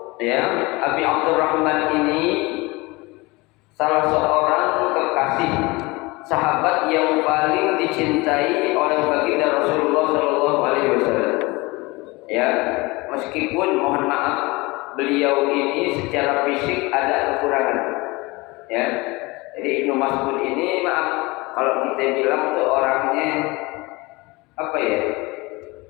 ya Abi Abdurrahman ini salah seorang kekasih sahabat yang paling dicintai oleh baginda Rasulullah sallallahu alaihi wasallam. Ya, meskipun mohon maaf beliau ini secara fisik ada kekurangan. Ya. Jadi Ibnu Mas'ud ini maaf kalau kita bilang tuh orangnya apa ya?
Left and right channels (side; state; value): right; quieter; 23.6 dB